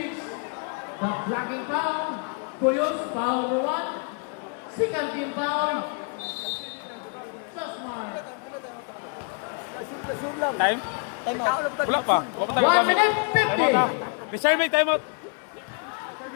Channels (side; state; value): right; quieter; 38.1 dB